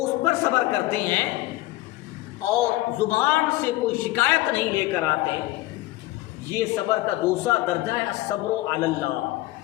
اس پر صبر کرتے ہیں اور زبان سے کوئی شکایت نہیں لے کر آتے۔ یہ صبر کا دوسرا درجہ ہے الصبر علی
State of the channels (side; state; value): right; quieter; 17.9 dB